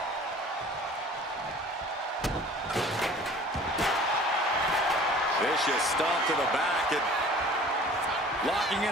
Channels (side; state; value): both; normal; correlation 0.47